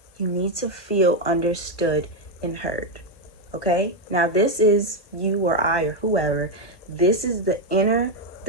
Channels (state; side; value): late; right; 1.1 ms